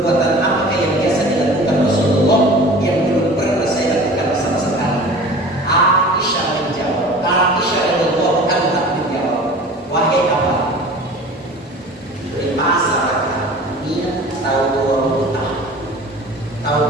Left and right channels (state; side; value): normal; both; correlation 0.41